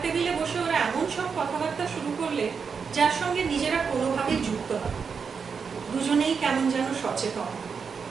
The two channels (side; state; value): left; quieter; 5.9 dB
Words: টেবিলে বসে ওরা এমন সব কথাবার্তা শুরু করলে যার সঙ্গে নিজেরা কোনোভাবেই যুক্ত নয়। দুজনেই কেমন যেন সচেতন,